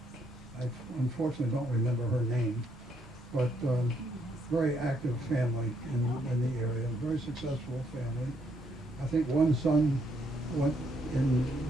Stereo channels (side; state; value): both; normal; correlation 0.73